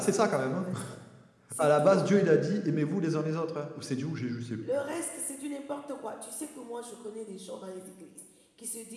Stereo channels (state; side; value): identical; both; correlation 1.00